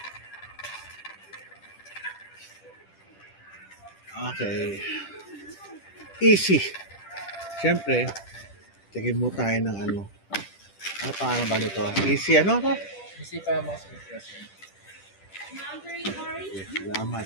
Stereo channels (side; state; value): right; late; 10 ms